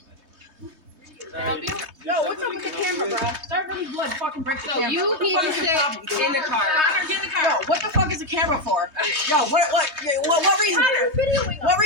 Can I help you? No, what's up with the camera, bro? Start really blood, fucking break the camera. So you need to sit in the car. Connor, get in the car. Yo, what the fuck is the camera for? Yo, what reason? What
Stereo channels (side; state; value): left; late; 3.2 ms